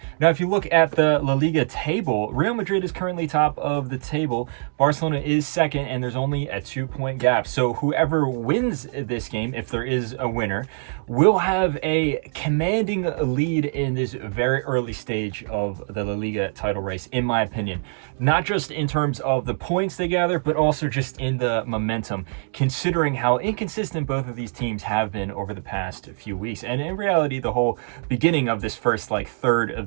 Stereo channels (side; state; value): left; silent; digital silence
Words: Now, if you look at the La Liga table, Real Madrid is currently top of the table. Barcelona is second, and there's only a 2-point gap. So whoever wins this game, if there is a winner, will have a commanding lead in this very early stage of the La Liga title race, in my opinion. Not just in terms of the points they gather, but also just in the momentum, considering how inconsistent both of these teams have been over the past few weeks. And in reality, the whole beginning of this first third of